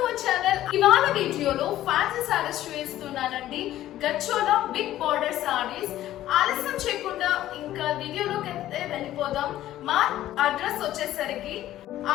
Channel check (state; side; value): quieter; right; 13.6 dB